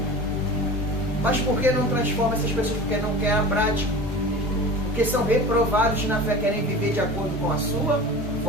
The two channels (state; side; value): normal; both; correlation 0.34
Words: Mas por que não transforma essas pessoas? Porque não querem a prática. Porque são reprovados na fé, querem viver de acordo com a sua